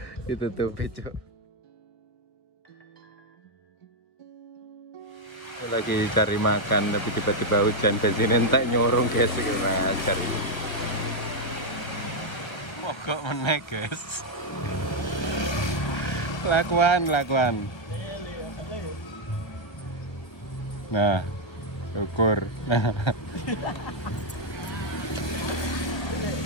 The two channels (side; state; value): right; late; 1.2 ms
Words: ditutupi cok. Lagi cari makan tapi tiba-tiba hujan, bensin entek nyorong guys. Mogok meneh guys. Lakuan. Nah, ukur. Nah.